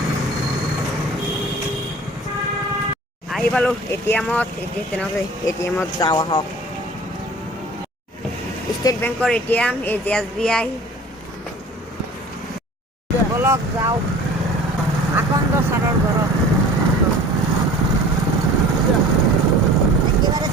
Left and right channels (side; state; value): both; normal; correlation 0.44